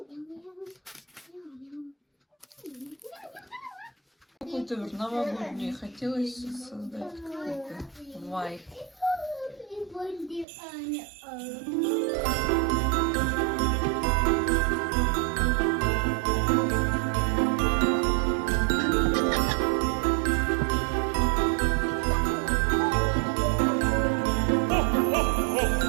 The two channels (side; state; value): left; drops out; at 10.5 s